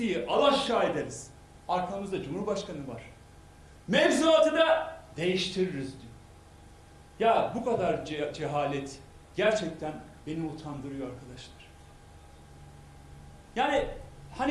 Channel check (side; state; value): both; identical; correlation 1.00